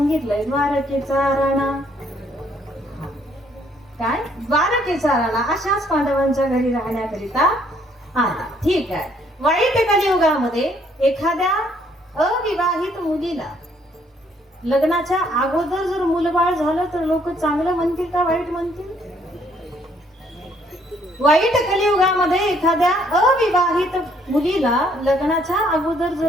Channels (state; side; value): normal; both; correlation 0.66